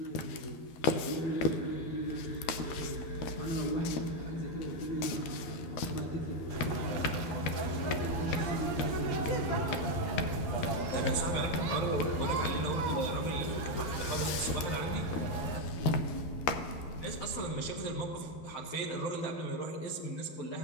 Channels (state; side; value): late; right; 12 ms